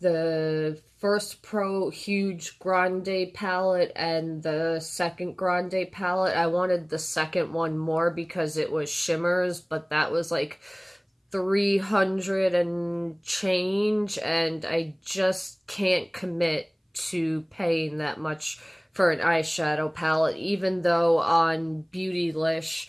first Pro huge Grande palette and the second Grande palette. I wanted the second one more because it was shimmers, but that was like 300 and change, and I just can't commit to paying that much for an eyeshadow palette, even though on Beautylish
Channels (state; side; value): identical; both; correlation 1.00